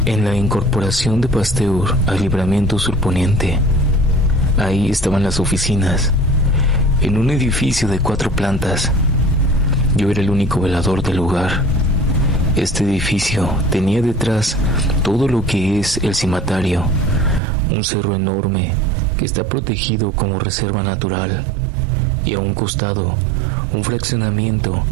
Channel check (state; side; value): drops out; left; at 17.4 s